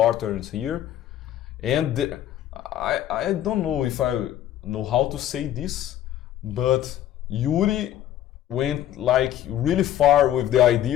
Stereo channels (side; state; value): right; quieter; 11.9 dB